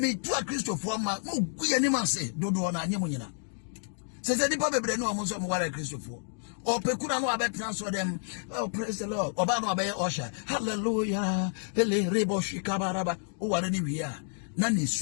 tu a Christopher ma mo guye ni ma se dodo na anyem nyina se di pa bebre no mo so mo ware Christopher o pekura no abetna so dem oh praise the Lord oba no abaye osha hallelujah ele rebo shikabaraba o ware ni wi a na ni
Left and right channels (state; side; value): silent; right; digital silence